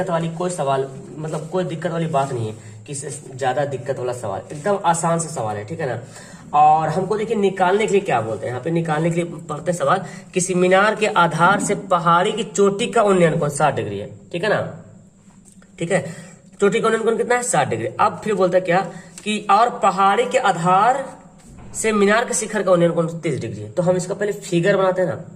वाली कोई सवाल मतलब कोई दिक्कत वाली बात नहीं है, किसी ज्यादा दिक्कत वाला सवाल, एकदम आसान सा सवाल है, ठीक है ना। और हमको देखिए निकालने के लिए क्या बोलते हैं, यहाँ पे निकालने के लिए पढ़ते हैं सवाल, किसी मीनार के आधार से पहाड़ी की चोटी का उन्नयन कोण 60 डिग्री है, ठीक है ना, ठीक है। चोटी का उन्नयन कोण कितना है, 60 डिग्री। अब फिर बोलता है क्या कि और पहाड़ी के आधार से मीनार के शिखर का उन्नयन कोण 30 डिग्री है। तो हम इसका पहले फिगर बनाते हैं ना,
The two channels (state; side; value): identical; both; correlation 1.00